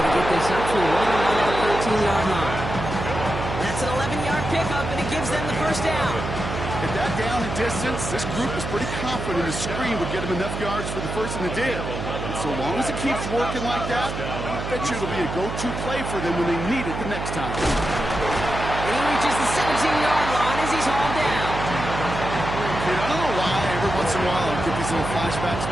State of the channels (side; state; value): right; noise; hum, 5 dB below the sound